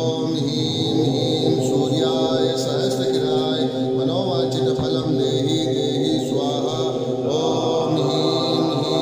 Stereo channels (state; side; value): identical; both; correlation 1.00